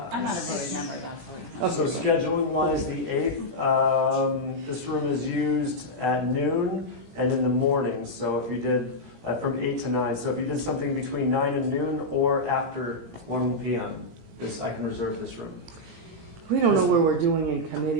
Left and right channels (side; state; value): left; late; 17 ms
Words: I'm not a voting member, that's So scheduling wise, the 8th, this room is used at noon and in the morning. So if you did from 8 to 9, so if you did something between 9 and noon or after 1 p.m., I can reserve this room. We don't know where we're doing in